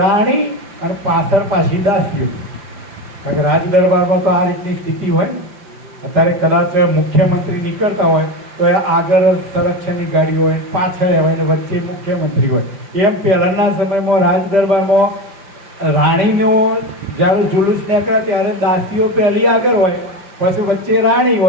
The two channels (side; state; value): left; late; 5.1 ms